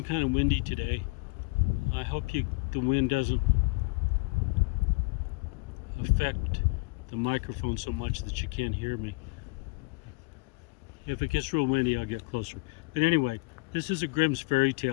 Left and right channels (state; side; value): quieter; right; 28.8 dB